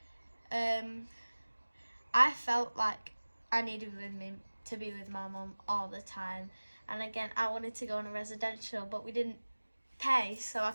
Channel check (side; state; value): both; inverted; correlation -1.00